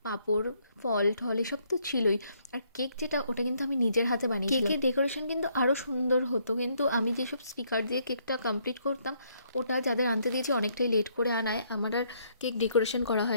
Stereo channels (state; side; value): inverted; both; correlation -0.70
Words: পাঁপড়, ফল ঠল, এসব তো ছিলই। আর কেক যেটা, ওটা কিন্তু আমি নিজের হাতে বানিয়েছিলাম। কেকের ডেকোরেশন কিন্তু আরও সুন্দর হতো, কিন্তু আমি যেসব স্টিকার দিয়ে কেকটা কমপ্লিট করতাম, ওটা যাদের আনতে দিয়েছি অনেকটাই লেট করে আনায় আমার আর কেক ডেকোরেশন করা